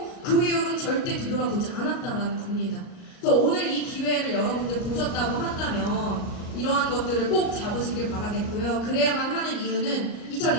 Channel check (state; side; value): late; right; 38 ms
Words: 그 이후로는 절대 뒤돌아보지 않았다는 겁니다. 그래서 오늘 이 기회를 여러분들 보셨다고 한다면 이러한 것들을 꼭 잡으시길 바라겠고요. 그래야만 하는 이유는